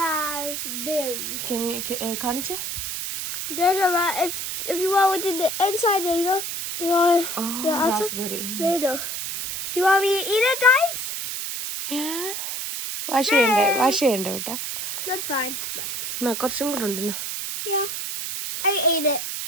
Can you കാണിച്ചേ? There's a if you want within the inside, there you know. You want the outside, raspberry. there you go. Do you want me to eat it, guys? Yeah. Wash ചെയ്യണ്ടേ കേട്ടാ? That's fine. എന്നാ കുറച്ചും കൂടെ ഉണ്ട്. Yeah, I ate it.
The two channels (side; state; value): right; noise; hiss, 4 dB below the sound